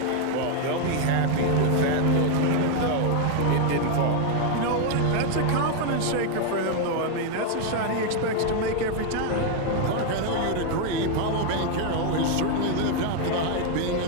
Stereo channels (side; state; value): both; different; correlation 0.00